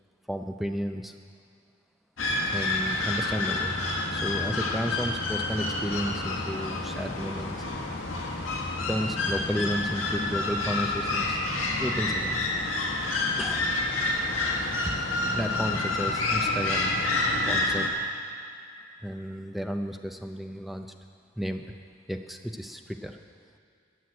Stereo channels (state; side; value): normal; both; correlation 0.39